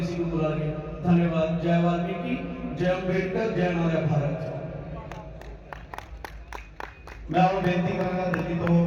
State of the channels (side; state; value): both; identical; correlation 1.00